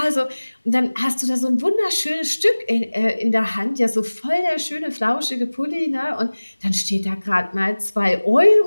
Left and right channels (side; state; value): both; inverted; correlation -1.00